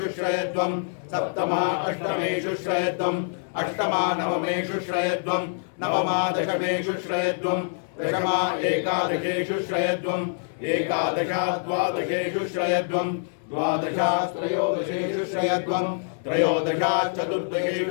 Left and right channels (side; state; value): right; silent; 60 dB below the other